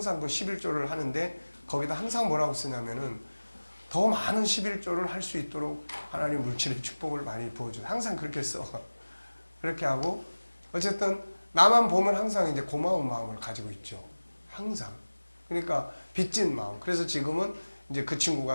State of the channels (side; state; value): both; inverted; correlation -1.00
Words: 그 11조를 하는데 거기다 항상 뭐라고 쓰냐면은 더 많은 11조를 할 수 있도록 하나님 물질의 축복을 많이 부어줘. 항상 그렇게 써. 그렇게 하고 어쨌든 나만 보면 항상 이제 고마운 마음을 가지고 있죠. 항상. 그러니까 빚진 마음. 그래서 지금은 이제 그